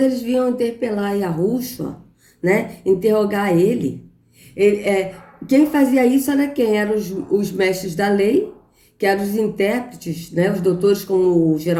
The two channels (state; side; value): identical; both; correlation 1.00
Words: eles vinham interpelar Yahushua, né? Interrogar ele. Quem fazia isso era quem? Eram os mestres da lei, que eram os intérpretes, né? Os doutores, como o